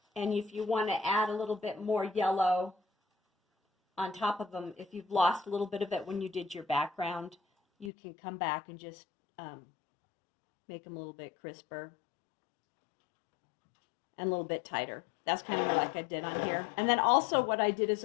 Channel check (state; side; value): drops out; right; at 7.9 s